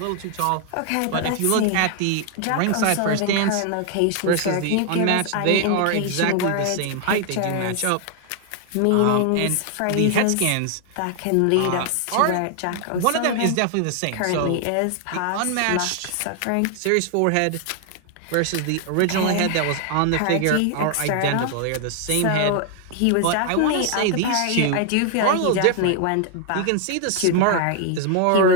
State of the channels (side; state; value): both; different; correlation 0.00